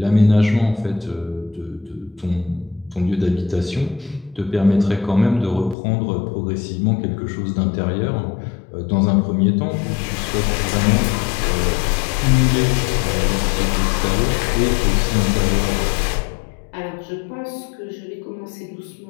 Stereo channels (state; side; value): drops out; right; at 5.8 s